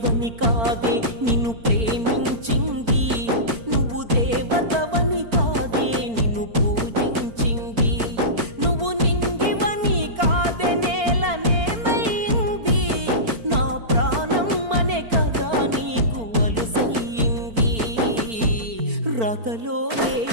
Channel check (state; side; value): late; left; 4.4 ms